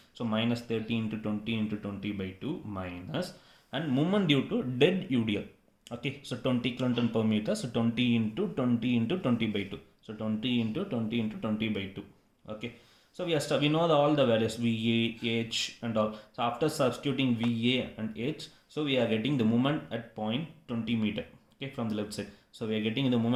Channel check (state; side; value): identical; both; correlation 1.00